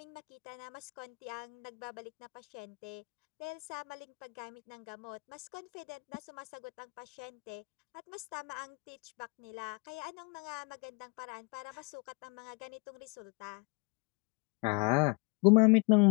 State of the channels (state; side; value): quieter; right; 31.2 dB